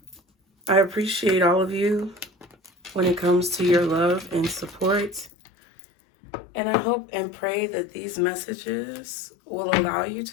I appreciate all of you when it comes to your love and support. And I hope and pray that these messages will allow you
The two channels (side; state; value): right; drops out; at 5.3 s